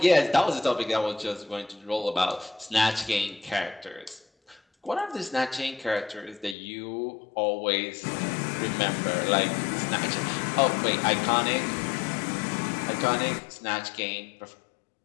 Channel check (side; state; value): right; drops out; at 6.6 s